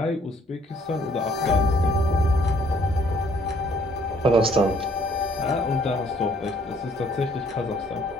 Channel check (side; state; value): both; normal; correlation 0.63